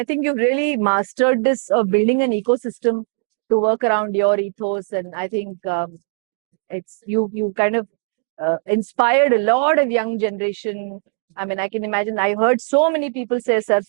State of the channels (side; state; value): left; silent; 55 dB below the other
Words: think you've really mastered this of building an ecosystem to work around your ethos, and I think it's you kind of inspired a lot of young generation. I mean, I can imagine. I heard so many people say sir,